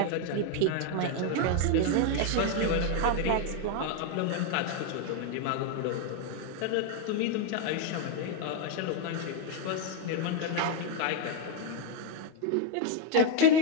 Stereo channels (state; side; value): different; both; correlation 0.01